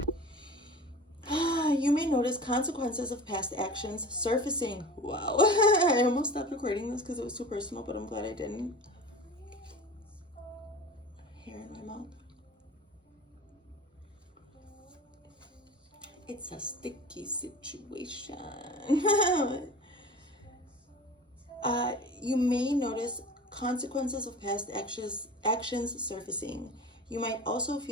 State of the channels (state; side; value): normal; both; correlation 0.37